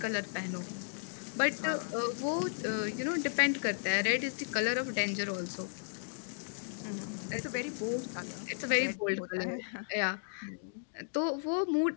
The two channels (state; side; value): silent; right; digital silence